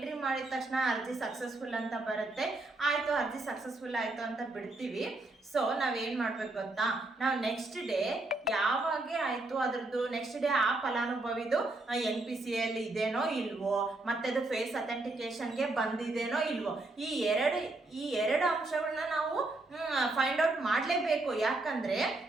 ಮಾಡಿದ ತಕ್ಷಣ ಅರ್ಜಿ ಸಕ್ಸಸ್ಫುಲ್ ಅಂತ ಬರುತ್ತೆ. ಆಯಿತು, ಅರ್ಜಿ ಸಕ್ಸಸ್ಫುಲ್ ಆಯಿತು ಅಂತ ಬಿಡ್ತೀವಿ. ಸೊ ನಾವೇನು ಮಾಡ್ಬೇಕು ಗೊತ್ತಾ, ನಾವು ನೆಕ್ಸ್ಟ್ ಡೇ ಯಾವಾಗ ಆಯಿತು ಅದ್ರದ್ದು ನೆಕ್ಸ್ಟ್ ಡೇ ಆ ಫಲಾನುಭವಿದು NPC ಅಲ್ಲಿ ಇದೇನೋ ಇಲ್ವೋ, ಮತ್ತೆ ಅದು ಫೇಸ್ ಅಥೆಂಟಿಕೇಶನ್ಗೆ ಬಂದಿದೇನೋ ಇಲ್ವೋ, ಈ ಎರಡು ಅಂಶಗಳನ್ನ ನಾವು ಫೈಂಡ್ ಔಟ್ ಮಾಡಲೇಬೇಕು. ಯಾಕಂದ್ರೆ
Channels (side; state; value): left; quieter; 3.0 dB